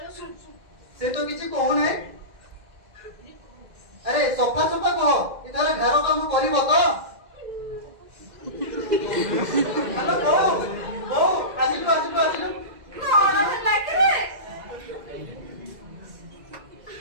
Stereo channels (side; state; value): left; late; 2.0 ms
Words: ଶୁଣୁ ଶୁଣୁ ସେ ତ କିଛି କହୁନାହିଁ। ଆରେ ସଫା ସଫା କହ, ଏଥର ଘର କାମ କରିବ ତ? ହ୍ୟାଲୋ ବୋଉ, ବୋଉ ଆସିଲୁ ଆସିଲୁ ଆସିଲୁ। କଣ ହେଲା କି ରେ?